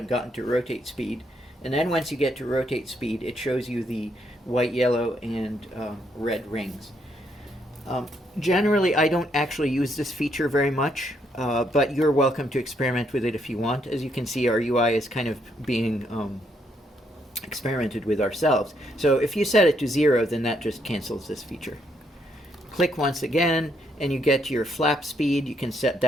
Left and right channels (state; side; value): normal; both; correlation 0.74